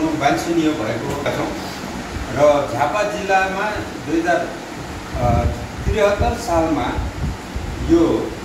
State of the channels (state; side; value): identical; both; correlation 1.00